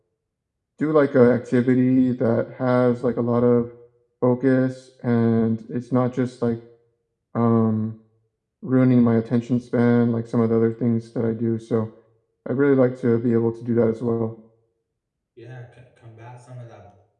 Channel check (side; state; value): both; identical; correlation 1.00